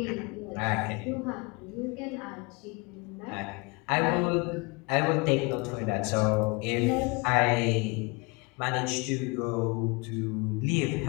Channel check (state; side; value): quieter; right; 28.2 dB